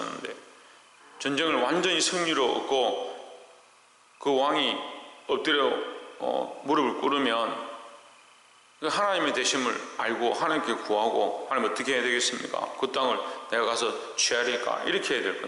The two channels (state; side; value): identical; both; correlation 1.00